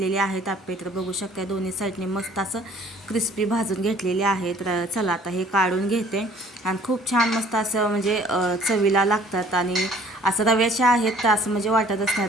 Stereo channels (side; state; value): both; normal; correlation 0.55